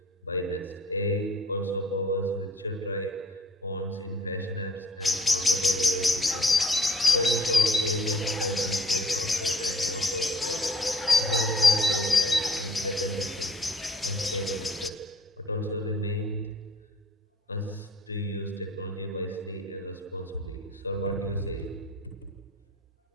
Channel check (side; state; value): both; normal; correlation 0.54